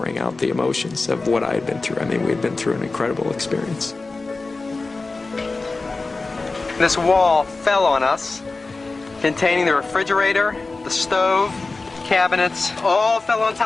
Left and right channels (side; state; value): right; quieter; 3.7 dB